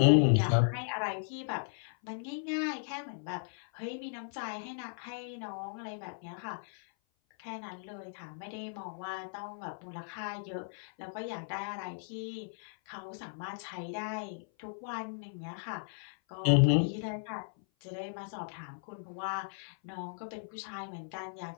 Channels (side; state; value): right; silent; 54 dB below the other